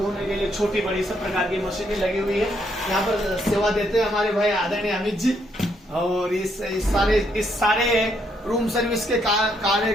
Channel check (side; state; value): both; normal; correlation 0.73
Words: के लिए छोटी बड़ी सब प्रकार की मशीनें लगी हुई है। यहाँ पर सेवा देते हैं हमारे भाई आदरणीय अमित जी। और इस सारे रूम सर्विस के